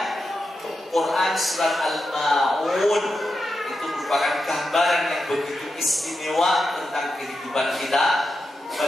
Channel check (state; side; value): normal; both; correlation 0.88